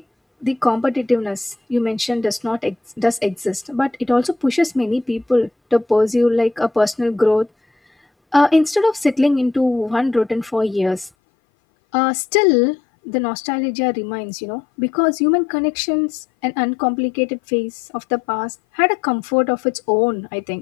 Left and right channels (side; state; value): right; drops out; at 11.1 s